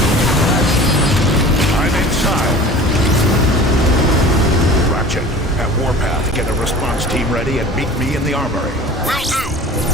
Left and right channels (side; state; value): both; normal; correlation 0.41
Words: I'm inside. Ratchet, at Warpath, get a response team ready and meet me in the armory. Will do.